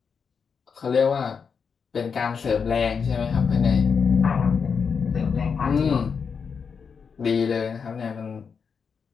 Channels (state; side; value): quieter; right; 6.0 dB